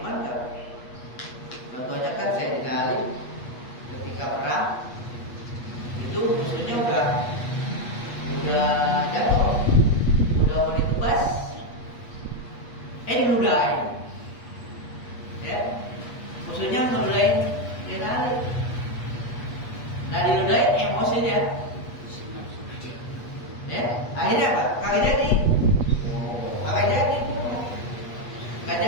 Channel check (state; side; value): late; right; 8.3 ms